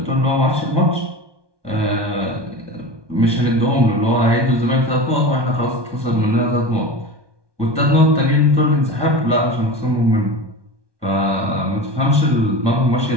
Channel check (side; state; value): left; late; 1.2 ms